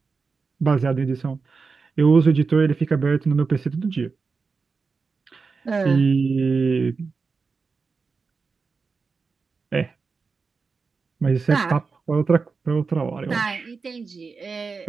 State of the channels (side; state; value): left; quieter; 4.7 dB